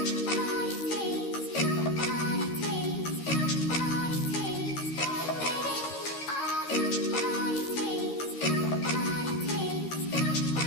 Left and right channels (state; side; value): late; right; 13 ms